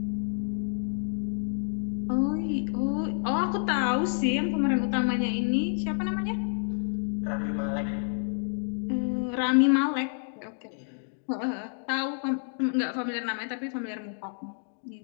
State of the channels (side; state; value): right; silent; 59 dB below the other